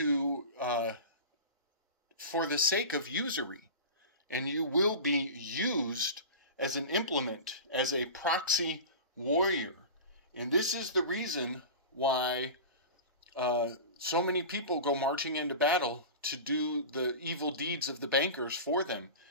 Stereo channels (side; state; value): both; inverted; correlation -0.31